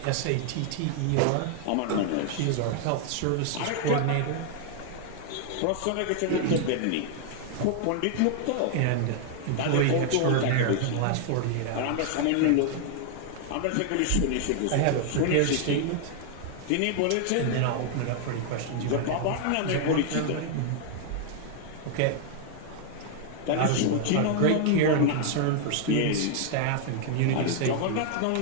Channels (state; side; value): different; both; correlation 0.00